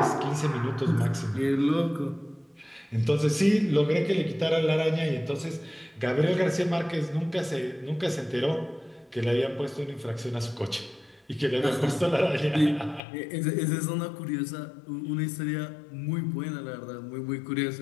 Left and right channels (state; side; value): drops out; right; at 13.0 s